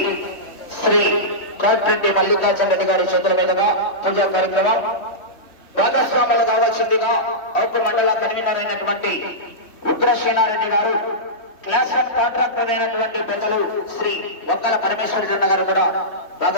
కోట్రెడ్డి మల్లికార్జున రెడ్డి గారి చేతుల మీదుగా పూజా కార్యక్రమం భాగస్వాములు కావాల్సిందిగా ఔపు మండల కన్వీనర్ అయినటువంటి ఉగ్రసేనారెడ్డి గారు, క్లాస్ వన్ కాంట్రాక్టర్ అయినటువంటి పెద్దలు శ్రీ వంకల పరమేశ్వర జన్న గారు కూడా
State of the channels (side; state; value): right; late; 3.1 ms